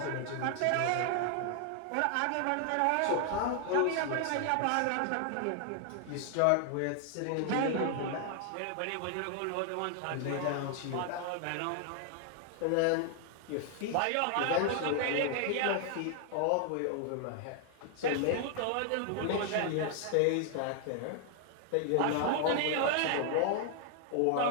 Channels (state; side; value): different; both; correlation 0.00